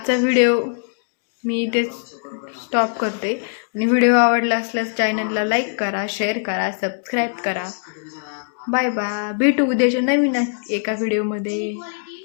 व्हिडिओ मी इथे स्टॉप करते. आणि व्हिडिओ आवडला असल्यास चॅनलला लाईक करा, शेअर करा, सबस्क्राईब करा. Bye bye. भेटू उद्याच्या नवीन एका व्हिडिओमध्ये.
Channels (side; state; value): right; silent; digital silence